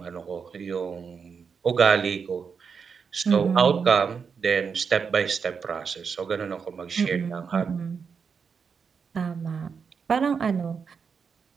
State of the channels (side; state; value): left; quieter; 6.0 dB